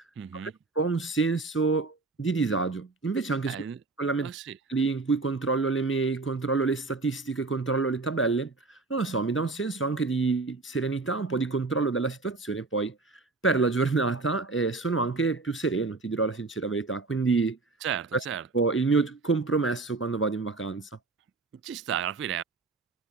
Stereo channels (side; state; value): left; quieter; 3.7 dB